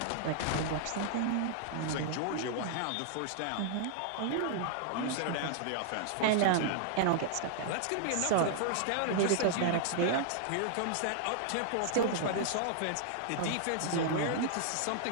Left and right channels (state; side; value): different; both; correlation -0.01